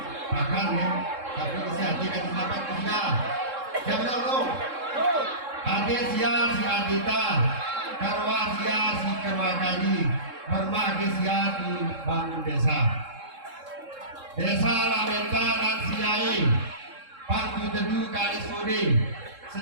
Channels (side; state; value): left; late; 3.7 ms